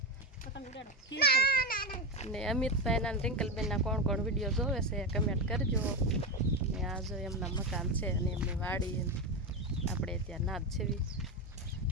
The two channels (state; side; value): normal; both; correlation 0.14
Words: અને અમિતભાઈના અને રિંકલબેનના કોણ કોણ વિડીયો જોવે છે કમેન્ટ કરજો. અને આ જો એમના મકાન છે અને એમની વાડી આપણે ત્યાં નાદ છેવી.